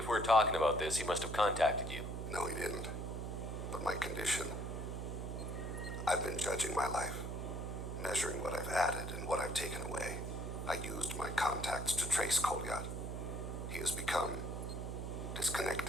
we're talking about this, he must have contacted you. No, he didn't. But my condition... I've been judging my life, measuring what I've added and what I've taken away. I used my contacts to trace Kolyat. He has become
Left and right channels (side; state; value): right; noise; hum, 5 dB below the sound